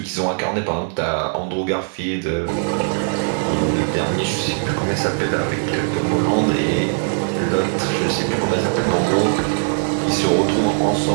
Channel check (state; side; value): silent; left; 66 dB below the other